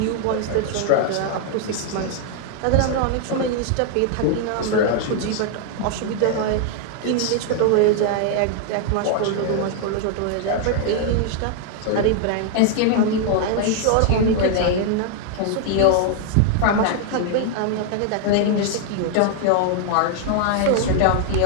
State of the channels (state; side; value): different; both; correlation 0.00